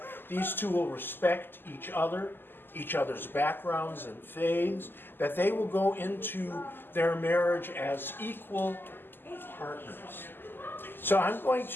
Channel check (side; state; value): right; late; 0.096 ms